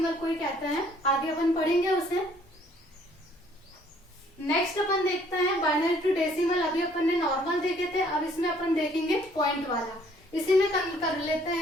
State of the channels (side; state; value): both; normal; correlation 0.61